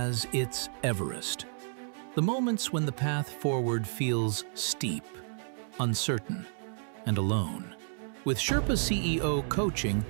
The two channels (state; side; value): silent; left; 57 dB below the other